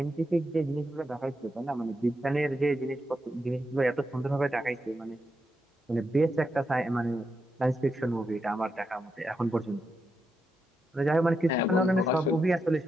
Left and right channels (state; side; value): normal; both; correlation 0.84